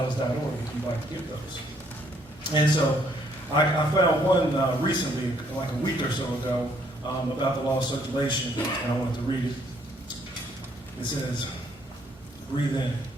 if you'd like to get those. And so I found one recently, like a week or so ago, about the law of circulation, and I wanted to read it. It says, breathe in,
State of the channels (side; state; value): both; normal; correlation 0.67